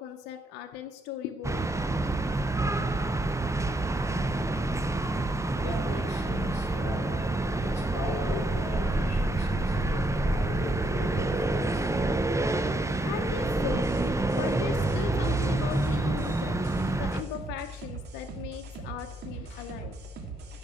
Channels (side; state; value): both; normal; correlation 0.75